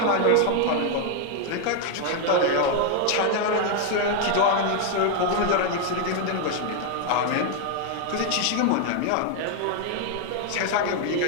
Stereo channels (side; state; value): both; different; correlation 0.01